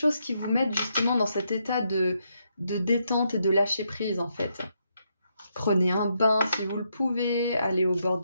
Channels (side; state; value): both; inverted; correlation -0.79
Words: qui vous mettent justement dans cet état de détente et de lâcher prise en fait. Prenez un bain si vous le pouvez, allez au bord